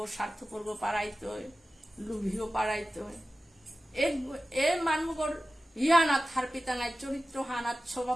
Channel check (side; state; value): both; normal; correlation 0.95